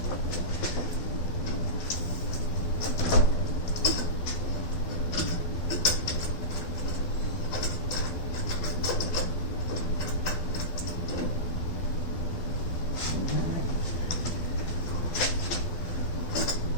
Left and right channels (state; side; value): late; right; 12 ms